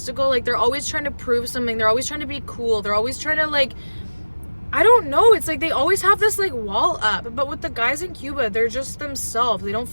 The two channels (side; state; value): both; inverted; correlation -1.00